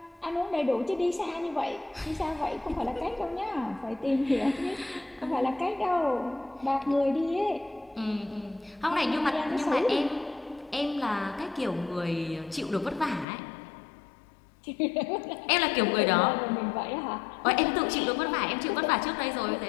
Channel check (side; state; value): right; drops out; at 13.2 s